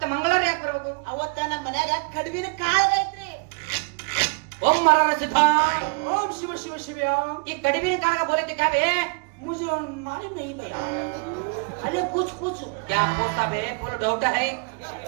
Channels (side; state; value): left; quieter; 34.0 dB